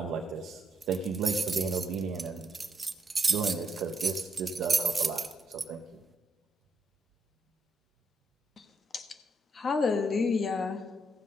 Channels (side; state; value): both; normal; correlation 0.78